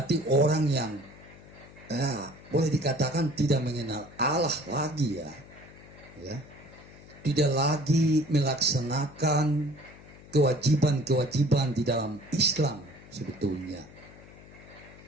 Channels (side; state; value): left; noise; hum, 20 dB below the sound